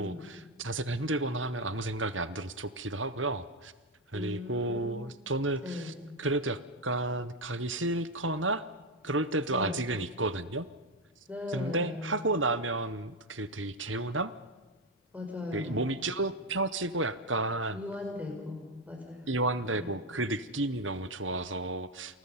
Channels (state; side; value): normal; both; correlation 0.07